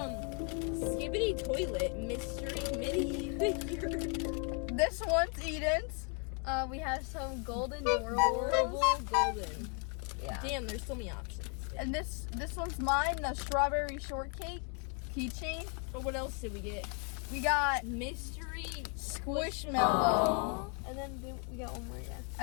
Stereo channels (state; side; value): quieter; right; 37.3 dB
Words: Toilet Mystery Mini figure. This one's Eden's. we have some golden Adorable golden. Yeah. Damn, there's so many options. And this one's mine, the strawberry shortcake keychain. But what else did we get? We got Mystery Squishmallow. And then we got one more, yeah.